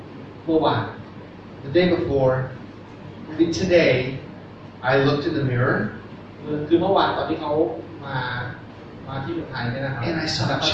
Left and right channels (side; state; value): both; identical; correlation 1.00